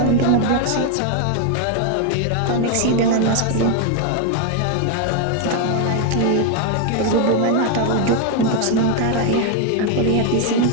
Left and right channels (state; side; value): different; both; correlation 0.01